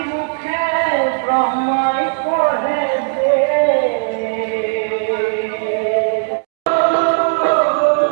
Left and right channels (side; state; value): left; silent; digital silence